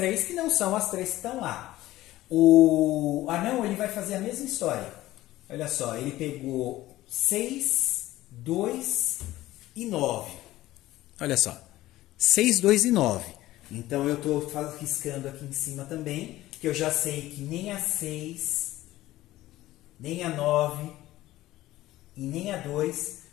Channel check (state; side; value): quieter; right; 16.0 dB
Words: que não são as 3 que estão lá. O anão, ele vai fazer a mesma história. Olha só, ele pegou 6, 2 e 9. Olha só, 6, 2 e 9. Então eu estou riscando aqui em cima também, que eu já sei que nem a 6... nem a 9 e nem a 2